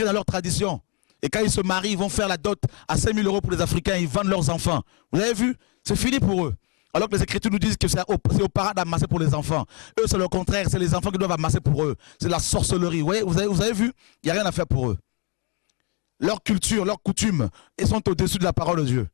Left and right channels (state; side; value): quieter; right; 33.3 dB